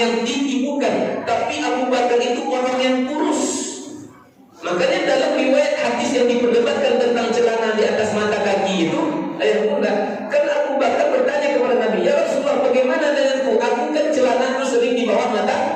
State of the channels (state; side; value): identical; both; correlation 1.00